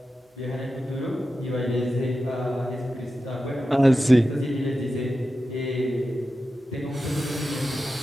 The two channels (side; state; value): both; normal; correlation 0.92